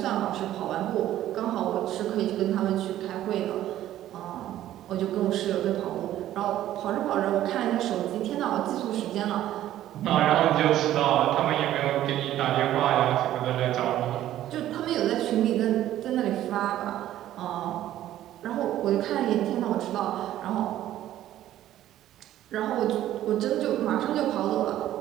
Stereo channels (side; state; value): left; quieter; 13.0 dB